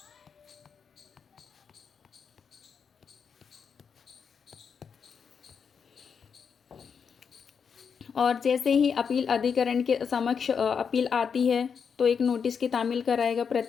और जैसे ही अपील अधिकरण के समक्ष अपील आती है तो एक नोटिस की तामील कराएगा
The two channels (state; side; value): quieter; right; 6.5 dB